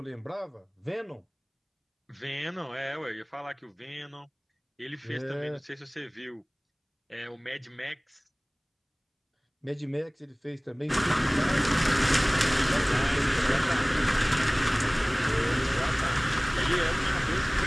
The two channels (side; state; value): both; identical; correlation 1.00